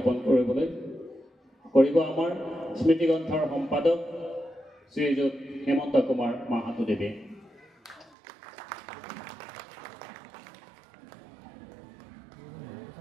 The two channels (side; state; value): left; drops out; at 8.1 s